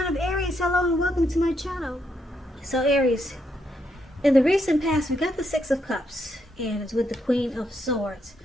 of Aries. Hello and welcome to my channel. So Aries, in the recent past we got the Six of Cups and it's with the Queen of Swords.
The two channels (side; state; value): both; normal; correlation 0.78